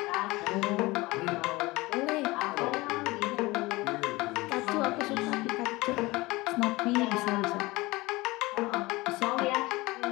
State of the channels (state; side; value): quieter; right; 21.3 dB